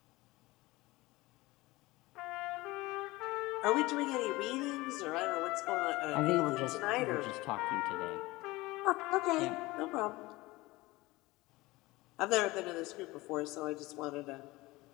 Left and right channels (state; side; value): quieter; right; 20.6 dB